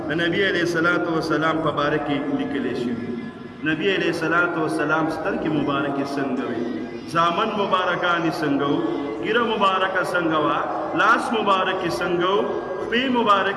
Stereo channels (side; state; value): both; identical; correlation 1.00